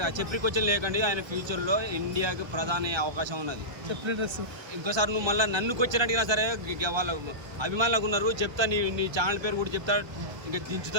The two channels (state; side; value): late; left; 1.3 ms